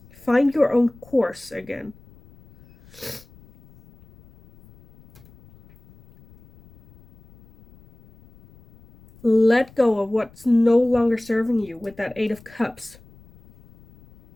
Find your own course again. Let go of what's no longer serving you with that 8 of Cups.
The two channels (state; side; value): noise; left; rumble, 26 dB below the sound